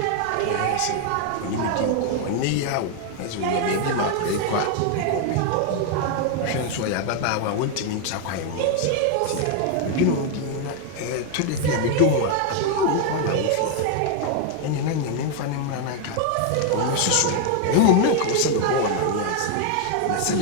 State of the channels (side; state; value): both; different; correlation 0.01